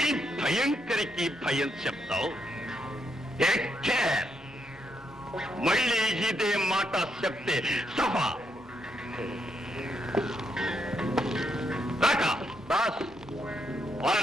భయంకరికి భయం చెప్తావు. Take care. మళ్ళీ ఇదే మాట చెప్తే సభ రాకా. బాస్, ఆ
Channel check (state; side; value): normal; both; correlation 0.79